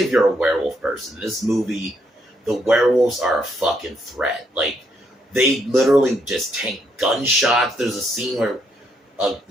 if you're a werewolf person. This movie. The werewolves are a fucking threat. Like, they literally just tank gunshots. There's a scene where,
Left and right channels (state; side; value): normal; both; correlation 0.74